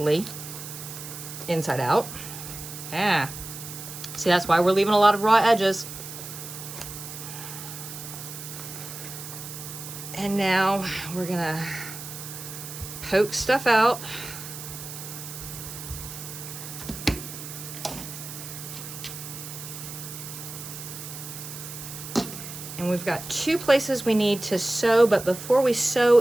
inside out. Yeah. See, that's why we're leaving a lot of raw edges. And now we're gonna poke stuff out. And we've got 2 places we need to sew, but before we sew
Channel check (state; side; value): noise; right; hiss, 10 dB below the sound